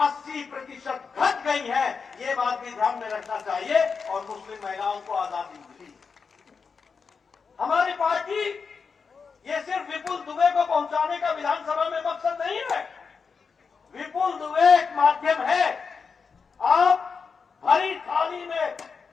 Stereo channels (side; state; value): right; quieter; 5.4 dB